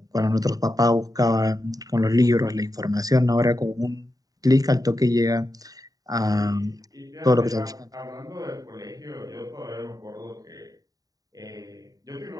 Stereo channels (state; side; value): late; left; 0.18 ms